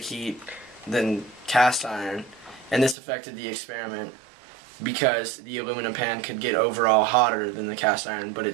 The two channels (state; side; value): drops out; left; at 3.0 s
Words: heat than cast iron, and this affected the experiment because the aluminum pan could get overall hotter than the cast iron, but it